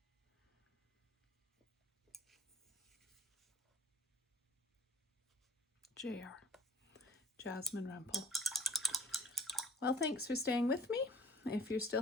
Jasmine Rumple. Well, thanks for staying with me. If you're still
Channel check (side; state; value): both; normal; correlation 0.42